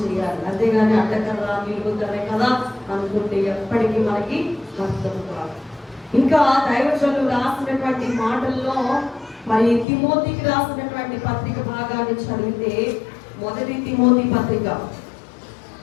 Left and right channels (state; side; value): drops out; right; at 9.9 s